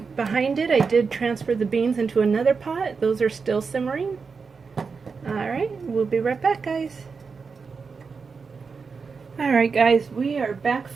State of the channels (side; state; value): left; quieter; 5.1 dB